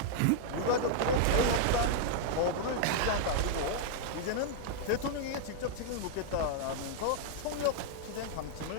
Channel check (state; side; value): different; both; correlation -0.01